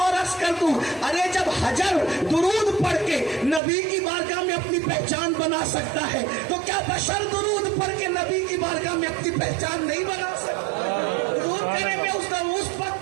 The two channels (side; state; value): left; drops out; at 3.6 s